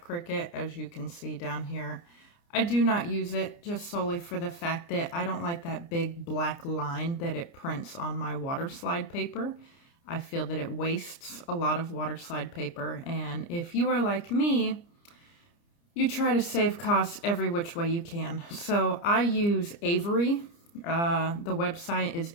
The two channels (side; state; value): right; late; 29 ms